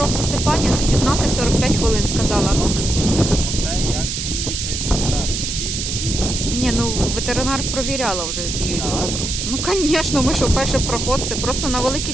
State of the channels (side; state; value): right; noise; hiss, 3 dB below the sound